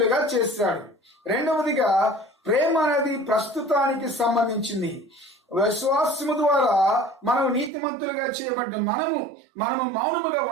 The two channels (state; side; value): drops out; left; at 7.7 s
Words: చేశాడు. రెండవదిగా ప్రేమ అనేది ప్రస్తుతానికి సంబంధించింది. విశ్వాసము ద్వారా మనం నీతిమంతులుగా చేయబడ్డ మనము మౌనముగా